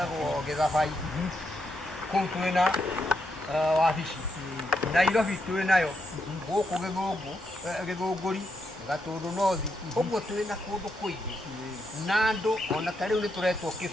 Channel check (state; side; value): normal; both; correlation 0.81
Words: Gĩthabai kũu twĩna wabici Nairobi twĩnayo gũkũ Gĩthũngũri Gatũndũ North ũguo twĩna kũndũ kũingĩ na andũ ona ta rĩu nĩ tũretwo